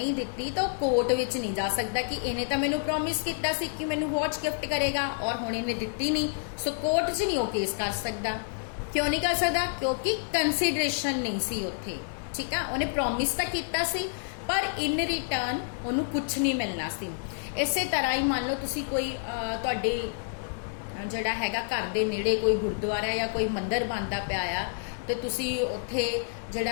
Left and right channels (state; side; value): silent; right; 59 dB below the other